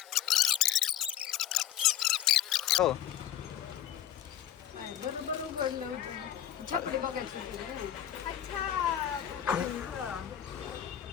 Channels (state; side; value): quieter; right; 10.8 dB